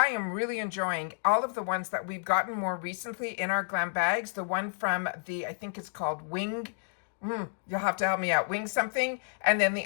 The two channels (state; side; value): silent; right; digital silence